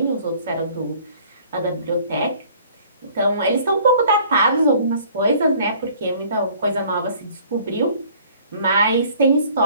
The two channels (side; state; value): both; inverted; correlation -0.54